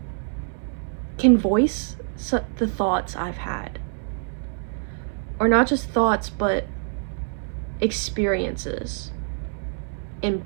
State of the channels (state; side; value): silent; left; 61 dB below the other